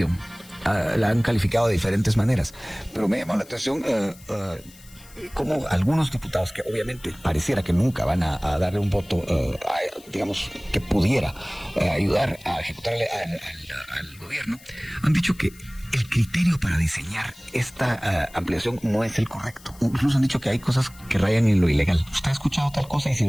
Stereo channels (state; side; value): noise; left; hiss, 23 dB below the sound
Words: La han calificado de diferentes maneras, pero me llama la atención como algunos diputados que obviamente pareciera que nunca van a darle un voto, digamos, que pudiera ayudar a ejecutar al gobierno, han dicho que el criterio para diseñar esta ampliación no es el correcto. Incluso han dicho que hay cosas que rayan en lo ilegal. ¿Usted ha escuchado tal cosa? Y si